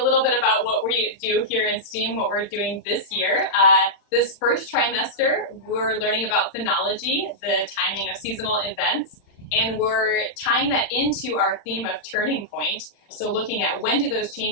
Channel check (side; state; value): right; late; 40 ms